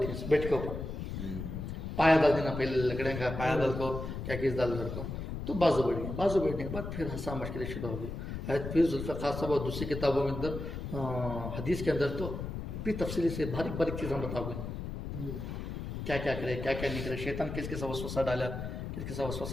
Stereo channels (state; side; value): noise; left; rumble, 6 dB below the sound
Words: बैठ के ऊपर पाया डाल देना, पहले लकड़े का पाया डाल को क्या किस डाल घर को, तो बाजू बढ़ गई, बाजू बैठने के बाद फिर हंसा मुश्किल शुरू हो गई। फिर जुल्फ़िकार साहब और दूसरी किताबों के अंदर हदीस के अंदर तो भी तफसीली से बारीक बारीक चीज़ें बताओ गई, क्या क्या करे क्या क्या नहीं करे, शैतान किसके साथ वसवसा डाला किसके साथ